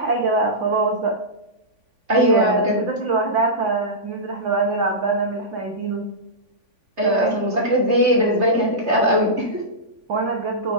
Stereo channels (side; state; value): left; late; 3.5 ms